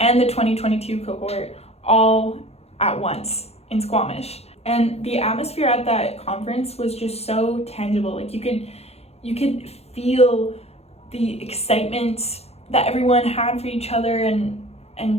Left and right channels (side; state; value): right; late; 0.30 ms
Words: the 2022 cohort all at once in Squamish. And the atmosphere at that conference was just so tangible. Like you could feel the excitement that everyone had for each other,